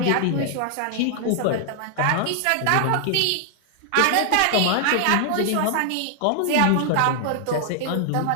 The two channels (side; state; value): both; different; correlation 0.00